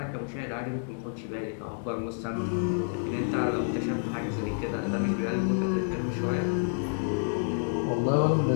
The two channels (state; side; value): silent; right; 57 dB below the other